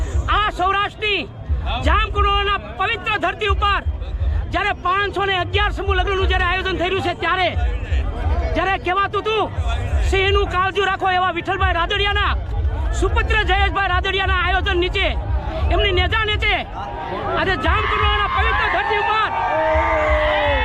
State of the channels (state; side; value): identical; both; correlation 1.00